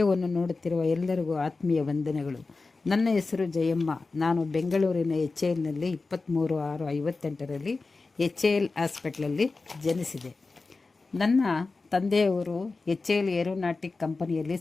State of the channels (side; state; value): right; quieter; 3.8 dB